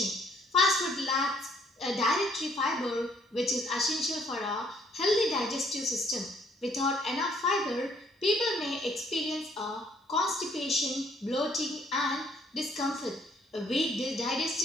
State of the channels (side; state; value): both; normal; correlation 0.65